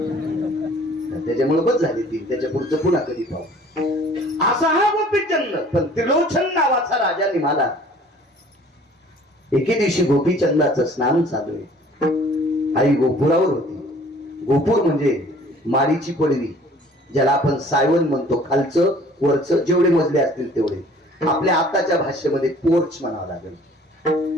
त्याच्यामुळे बस झाली 3. त्याच्या पुढचं पुन्हा कधी पाहू. असा हा गोपीचंद. पण त्रिलोचन नावाचा राजा निघाला. एके दिवशी गोपीचंदाचं स्नान चालू आहे. आई गोपुरावर होती. गोपूर म्हणजे माडीची पडवी, ज्याला आपण सायवन म्हणतो. खालचं वरचं जेवढे मजले असतील तेवढे. आपल्या आताच्या भाषेमध्ये पोर्च म्हणावं लागेल.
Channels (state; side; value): normal; both; correlation 0.52